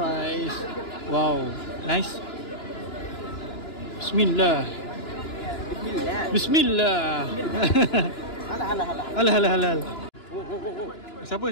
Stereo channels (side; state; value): right; late; 2.9 ms